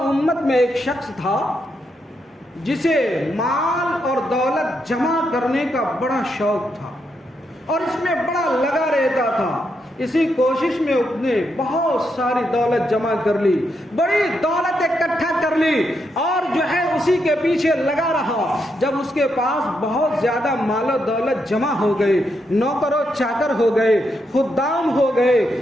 امت میں ایک شخص تھا جسے مال اور دولت جمع کرنے کا بڑا شوق تھا اور اس میں بڑا لگا رہتا تھا۔ اسی کوشش میں اس نے بہت ساری دولت جمع کر لی، بڑی دولت اکٹھا کر لی اور جو ہے اسی کے پیچھے لگا رہا۔ جب اس کے پاس بہت زیادہ مال و دولت جمع ہو گئی، نوکر و چاکر ہو گئے، خدام ہو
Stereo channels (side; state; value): both; normal; correlation 0.81